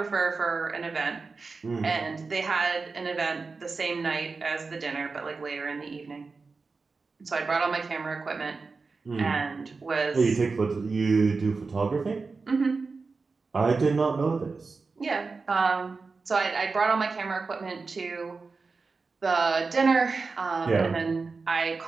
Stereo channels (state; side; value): quieter; left; 4.3 dB